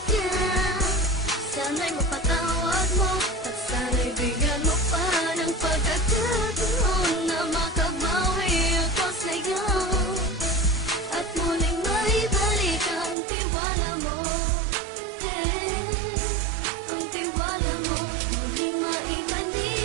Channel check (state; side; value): drops out; left; at 13.2 s